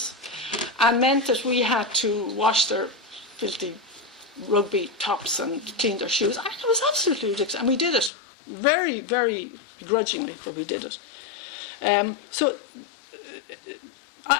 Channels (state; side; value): drops out; right; at 8.1 s